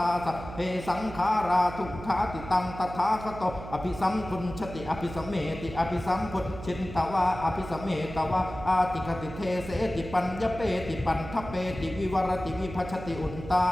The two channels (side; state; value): right; noise; hum, 12 dB below the sound